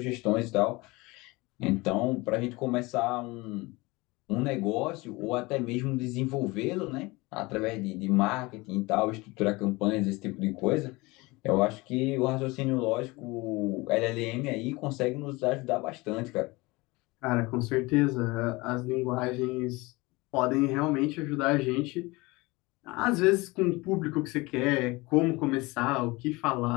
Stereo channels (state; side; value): quieter; right; 23.2 dB